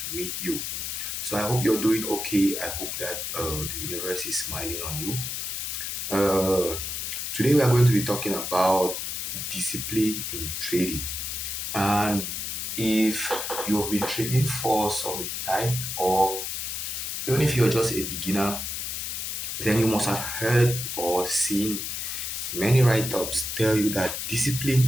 meet you. So I hope you're doing okay. I hope that the universe is smiling on you. Uh, Today we are going to be talking about discipline in trading. And if you have been trading for some time, or even if you're just a beginner, then you must have heard or seen many write-ups tell you that discipline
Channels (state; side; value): noise; left; hiss, 4 dB below the sound